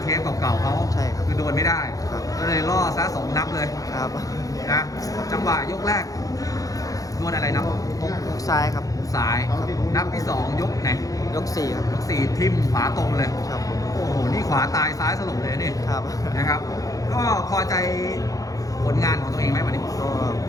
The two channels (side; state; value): right; late; 0.17 ms